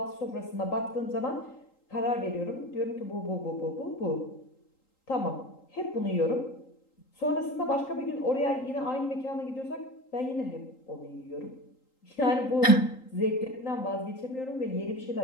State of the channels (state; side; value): late; right; 3.8 ms